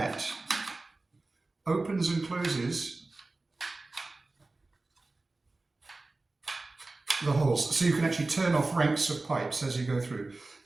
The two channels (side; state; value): left; quieter; 3.3 dB